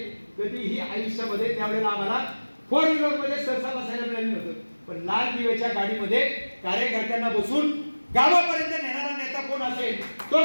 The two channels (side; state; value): both; inverted; correlation -1.00